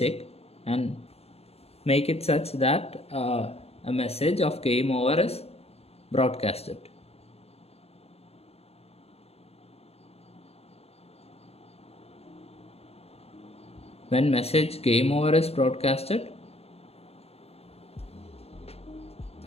and make it such that a message of game over is broadcasted. When message game over is broadcasted,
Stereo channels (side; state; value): right; late; 0.29 ms